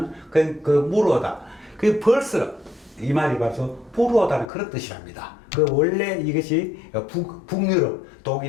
물어오다. 벌써 이 말이 바로 부르오다는 그런 뜻이랍니다. 원래 이것이 북유럽,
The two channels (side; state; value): right; drops out; at 4.5 s